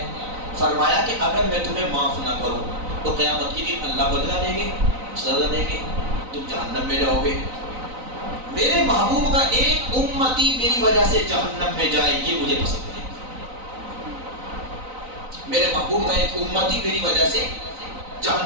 فرمایا کہ اگر میں تمہیں معاف نہ کروں تو قیامت کے دن اللہ بدلہ دیں گے، سزا دیں گے، تم جہنم میں جاؤ گے۔ میرے محبوب کا ایک امتی میری وجہ سے جہنم میں جائے یہ مجھے پسند ہے، میرے محبوب کا ایک امتی میری وجہ سے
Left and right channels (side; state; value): left; late; 3.9 ms